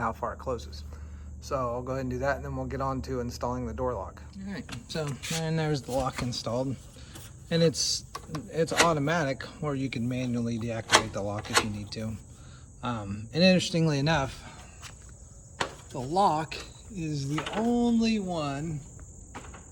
how far it closes. So I'll go ahead and do that, and then we'll get on to installing the door lock. All right, so and there's the lock installed. And it's automatic, or you can manually deactivate the lock if you need to. And interestingly enough, the lock is the only one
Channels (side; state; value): both; identical; correlation 1.00